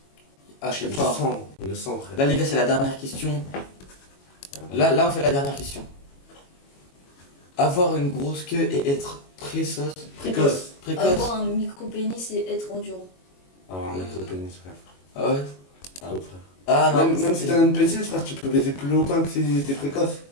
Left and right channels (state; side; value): late; right; 22 ms